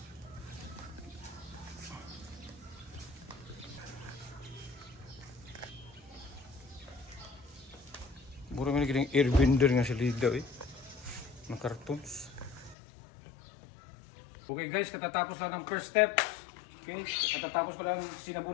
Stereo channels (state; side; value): drops out; right; at 12.8 s